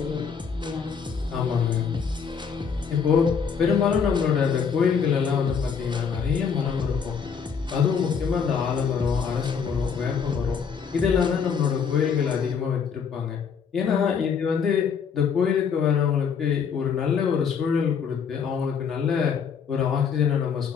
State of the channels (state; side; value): quieter; right; 6.5 dB